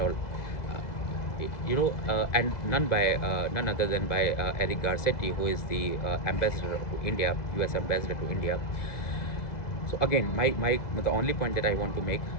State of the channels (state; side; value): late; right; 2.0 ms